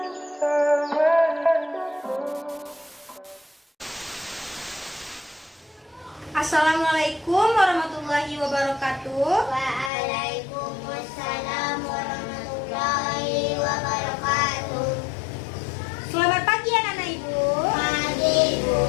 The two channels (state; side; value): drops out; right; at 9.9 s